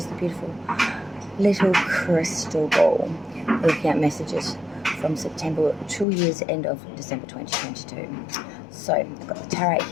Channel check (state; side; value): drops out; right; at 6.1 s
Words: the beautiful little crystal ball. Looking at messages from September to year's end of December 2022. So I've got the tarot